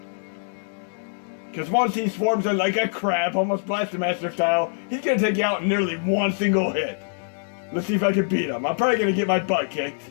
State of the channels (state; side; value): silent; right; digital silence